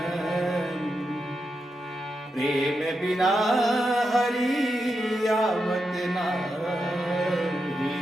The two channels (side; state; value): both; normal; correlation 0.86